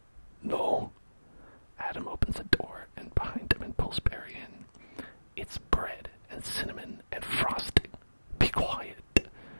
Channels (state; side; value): inverted; both; correlation -1.00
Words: No? Adam opens the door and behind him and pulls Barry in. It's bread and cinnamon and frosting. Be quiet.